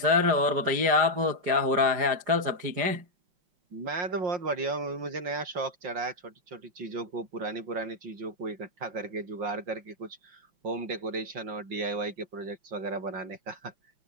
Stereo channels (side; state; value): left; late; 5.0 ms